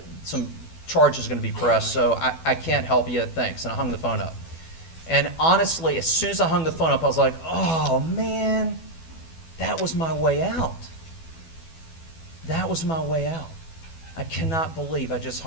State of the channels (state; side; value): late; right; 12 ms